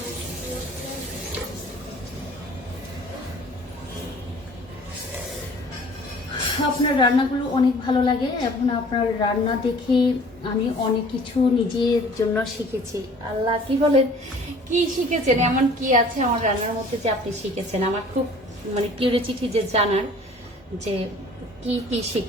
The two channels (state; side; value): normal; both; correlation 0.50